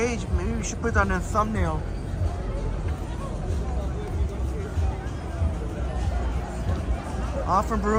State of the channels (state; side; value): identical; both; correlation 1.00